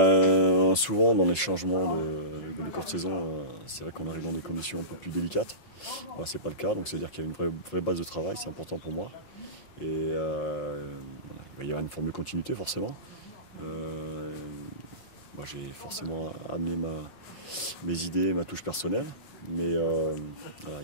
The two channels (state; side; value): late; right; 5.6 ms